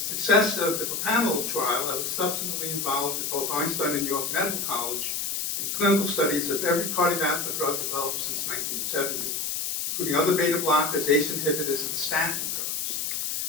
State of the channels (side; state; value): left; noise; hiss, 2 dB below the sound